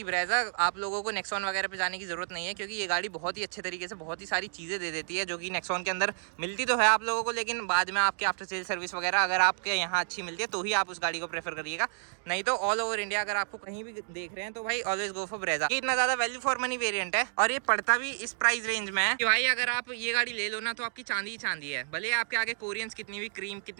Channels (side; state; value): left; silent; digital silence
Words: Brezza. आप लोगों को नेक्सॉन वगैरह पे जाने की जरूरत नहीं है, क्योंकि ये गाड़ी बहुत ही अच्छे तरीके से बहुत ही सारी चीजें दे देती है जो कि नेक्सॉन के अंदर मिलती तो है आप लोगों को, लेकिन बाद में आपके आफ्टर सेल सर्विस वगैरह अगर आपके यहाँ अच्छी मिलती है तो ही आप उस गाड़ी को प्रेफर करिएगा। नहीं तो ऑल ओवर इंडिया अगर आपको कहीं भी देख रहे हैं तो भाई ऑलवेज गो फॉर ब्रेजा। इतना ज्यादा वैल्यू फॉर मनी वेरिएंट है और ये पड़ता भी इस प्राइस रेंज में है कि भाई अगर आप ये गाड़ी ले लो ना तो आपकी चांदी ही चांदी है। भले आपके आगे कोरियंस कितनी भी क्रीम